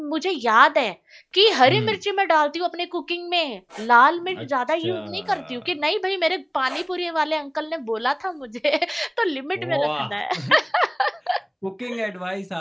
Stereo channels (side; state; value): both; identical; correlation 1.00